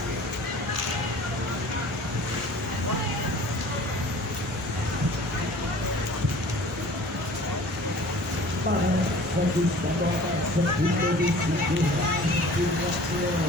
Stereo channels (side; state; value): both; normal; correlation 0.46